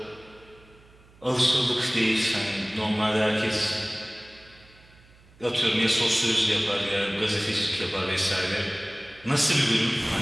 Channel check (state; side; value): noise; right; hum, 27 dB below the sound